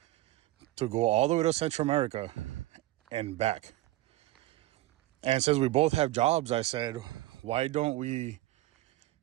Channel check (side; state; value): left; quieter; 17.1 dB